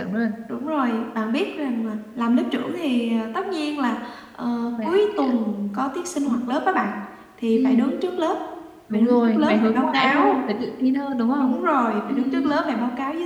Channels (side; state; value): both; identical; correlation 1.00